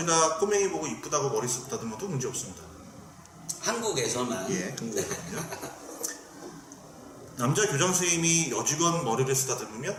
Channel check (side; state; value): both; identical; correlation 1.00